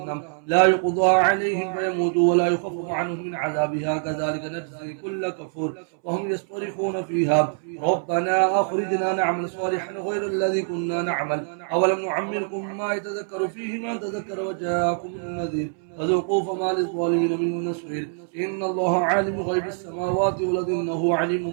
لا يقضى عليهم فيموتوا ولا يخفف عنهم من عذابها كذلك نجزي كل كفور وهم يصطرخون فيها ربنا أخرجنا نعمل صالحا غير الذي كنا نعمل أولم نعمركم ما يتذكر فيه من تذكر وجاءكم النذير فذوقوا فما للظالمين من نصير. إن الله عالم غيب السماوات والأرض إنه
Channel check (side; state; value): left; silent; 62 dB below the other